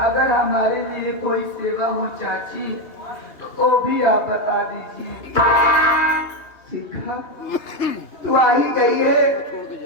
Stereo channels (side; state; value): right; late; 2.8 ms